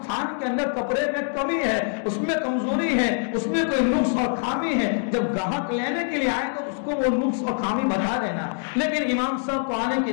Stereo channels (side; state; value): right; silent; 56 dB below the other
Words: تھان کے اندر کپڑے میں کمی ہے، اس میں کمزوری ہے، اس میں کوئی نقص اور خامی ہے، جب گاہک لینے کے لیے آئے تو اس کو وہ نقص اور خامی بتا دینا۔ لیکن امام صاحب کو آنے کی